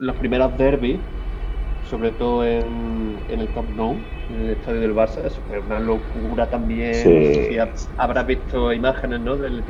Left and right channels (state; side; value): identical; both; correlation 1.00